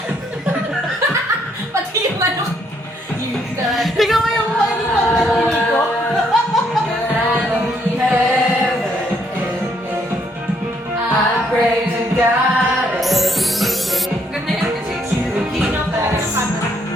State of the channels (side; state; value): both; normal; correlation 0.71